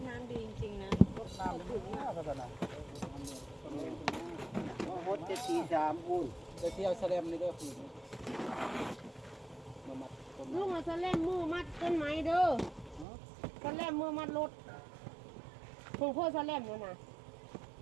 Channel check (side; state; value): left; drops out; at 13.1 s